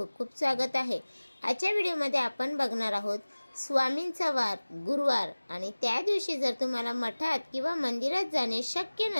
खूप स्वागत आहे। आजच्या व्हिडिओमध्ये आपण बघणार आहोत स्वामींचा वार गुरुवार आणि त्या दिवशी जर तुम्हाला मठात किंवा मंदिरात जाणे शक्य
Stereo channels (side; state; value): both; inverted; correlation -1.00